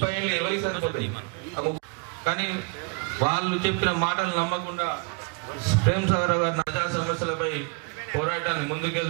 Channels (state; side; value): quieter; left; 34.7 dB